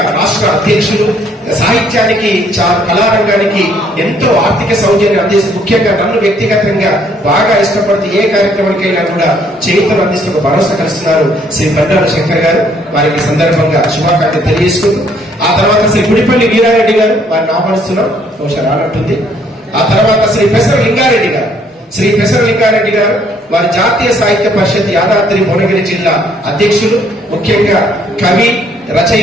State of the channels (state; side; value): normal; both; correlation 0.65